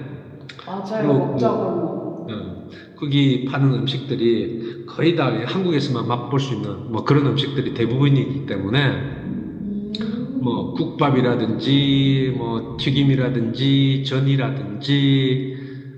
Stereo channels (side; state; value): both; identical; correlation 1.00